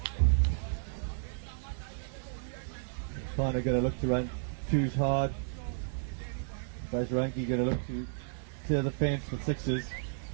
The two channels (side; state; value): left; silent; digital silence